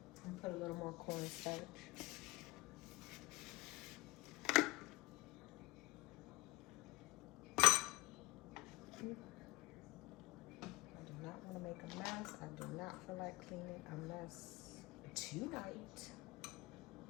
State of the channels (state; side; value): quieter; right; 22.5 dB